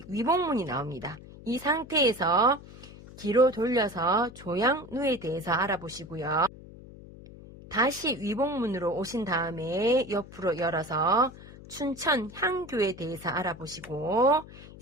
위복문이 나옵니다. 이 상태에서 뒤로 돌려서 조양누에 대해서 알아보시고요. 다시 위복문으로 오신 다음에 옆으로 열어서 춘천 향교에 대해서 알아보시고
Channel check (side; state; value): left; noise; hum, 18 dB below the sound